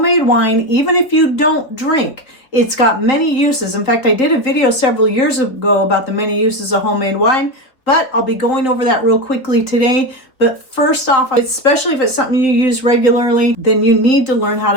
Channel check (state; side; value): late; right; 3.5 ms